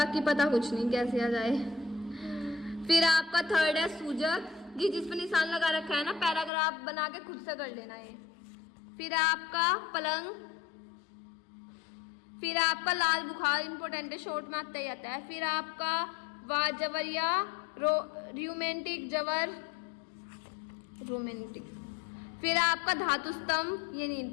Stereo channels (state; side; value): drops out; right; at 6.5 s